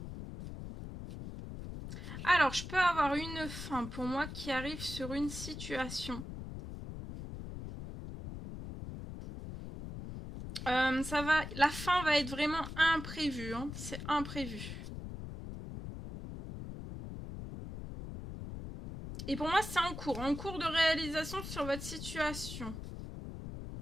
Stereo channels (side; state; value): left; noise; rumble, 9 dB below the sound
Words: Alors, je peux avoir une fin pour moi qui arrive sur une situation. La fin va être vraiment imprévue, hein. C'est imprévu. Et pour moi, c'est en cours de réalisation sur votre situation.